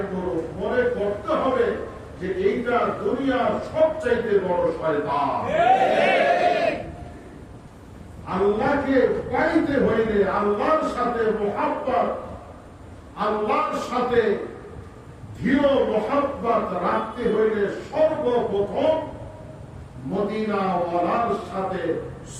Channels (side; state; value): both; identical; correlation 1.00